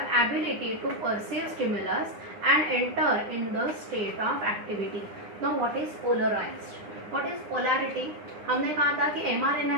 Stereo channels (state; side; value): late; left; 9.8 ms